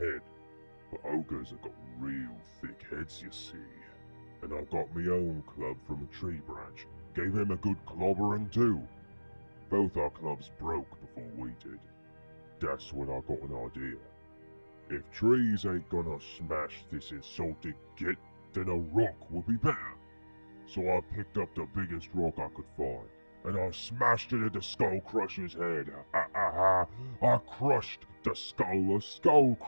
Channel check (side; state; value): both; inverted; correlation -1.00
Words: But ogres have got real thick heads, you see. And I got my own club from a tree branch, gave him a good clobbering too. Both our clubs broke before we did. That's when I got an idea. If trees ain't gonna smash this insulted git, then a rock would be better. So I picked up the biggest rock I could find, and I smashed it into Skull Crush's head. I crushed the skull of Skull